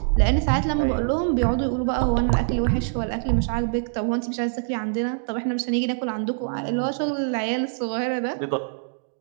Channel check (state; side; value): silent; left; digital silence